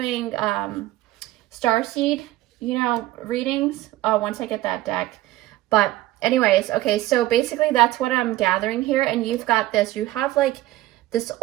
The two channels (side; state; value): left; quieter; 16.3 dB